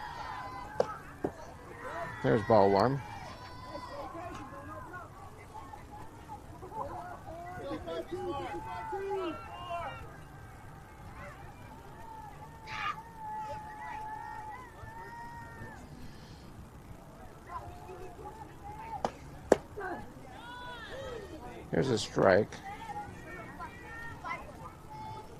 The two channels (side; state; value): both; identical; correlation 1.00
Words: There's ball one. Here's a strike.